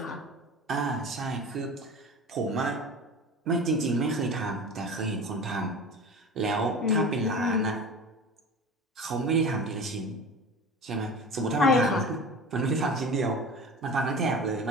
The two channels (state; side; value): normal; both; correlation 0.34